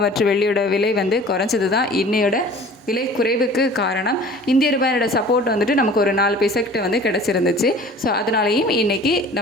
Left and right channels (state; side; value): normal; both; correlation 0.45